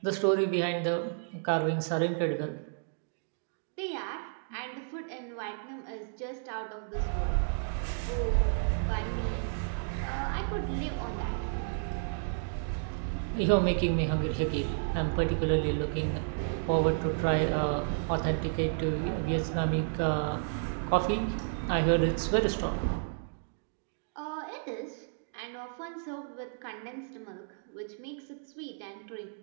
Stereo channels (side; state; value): left; silent; digital silence